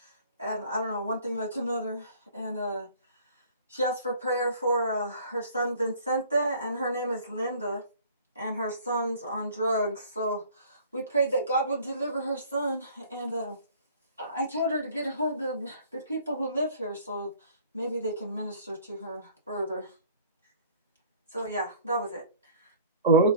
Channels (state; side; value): inverted; both; correlation -0.52